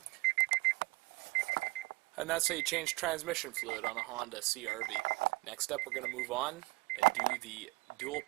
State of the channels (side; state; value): left; quieter; 22.6 dB